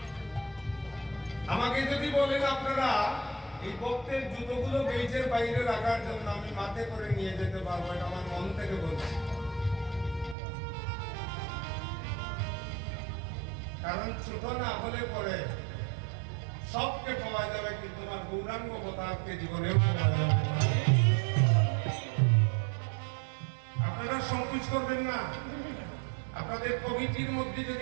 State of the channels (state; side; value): drops out; left; at 10.4 s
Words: আমাকে যদি বলেন আপনারা এই ভক্তের জুতোগুলো গেইটের বাইরে রাখার জন্য, আমি মাথে করে নিয়ে যেতে পারবো, এটা আমার মন থেকে বলছি। কারণ ছোট না হলে পরে সবকে পাওয়া যাবে, কিন্তু আমার গৌরাঙ্গ অবতারকে জীবনেও পাওয়া যাবে। আপনারা সংকোচ করবেন না। আপনাদের কমিটির মধ্যে